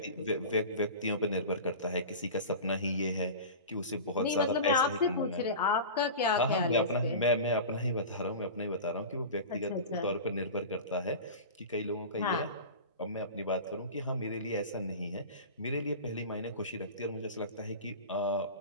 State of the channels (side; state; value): both; inverted; correlation -0.31